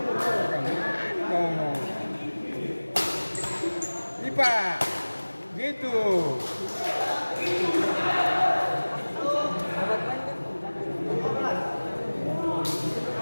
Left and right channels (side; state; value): both; inverted; correlation -1.00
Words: Ngomong. Ipa, gitu.